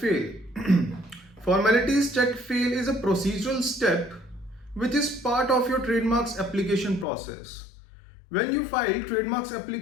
Formalities Chk Fail is a procedural step which is part of your trademarks application process. When you file trademarks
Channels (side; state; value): right; drops out; at 7.1 s